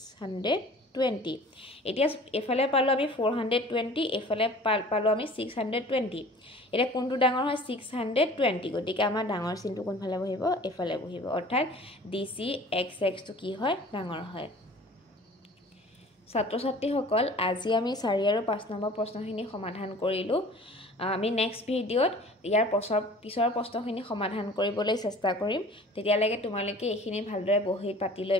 এতিয়া এফালে পালো আমি 420 এফালে পালো আমি 620 এটা কোনটো ডাঙৰ হয় 620 গতিকে আমাৰ ডাঙৰ চিনটো কোনফালে বহিব এফালে বহিব অৰ্থাৎ DCXX টো কি হয় ডাঙৰ হয় ছাত্ৰ ছাত্ৰী সকল আজি আমি 4 আৰু 5 নম্বৰ প্ৰশ্নখিনি সমাধান কৰিলো আমি নেক্সট ভিডিওত ইয়াৰ পিছৰ প্ৰশ্নখিনি সমাধান কৰিবলৈ চেষ্টা কৰিম তেতিয়ালৈকে তোমালোকে এইখিনি ভালদৰে বহি পাতি লৈ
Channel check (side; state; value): both; normal; correlation 0.46